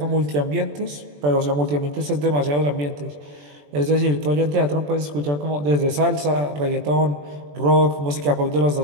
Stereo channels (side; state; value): left; late; 21 ms